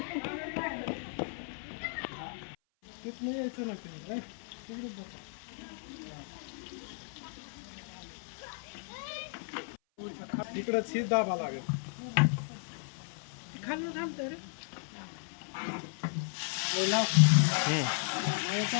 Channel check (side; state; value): right; silent; 55 dB below the other